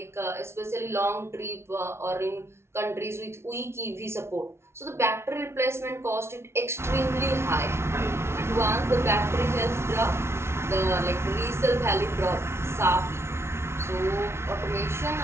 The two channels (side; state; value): left; late; 0.12 ms